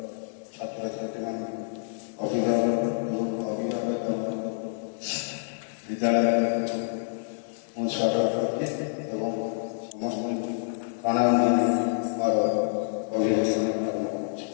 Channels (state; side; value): silent; right; 60 dB below the other